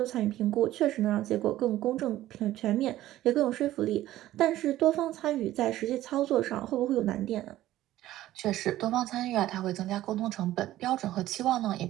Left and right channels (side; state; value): left; quieter; 14.5 dB